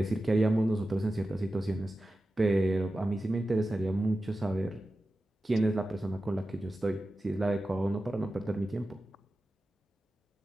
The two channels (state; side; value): normal; both; correlation 0.93